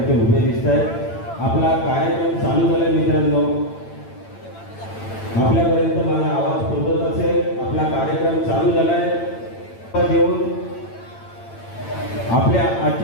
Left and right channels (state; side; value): late; right; 8.9 ms